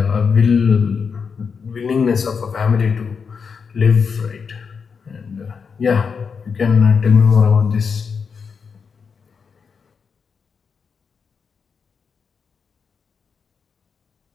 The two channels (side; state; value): right; quieter; 5.8 dB